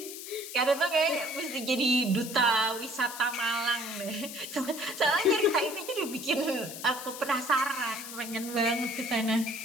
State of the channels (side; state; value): left; noise; hiss, 10 dB below the sound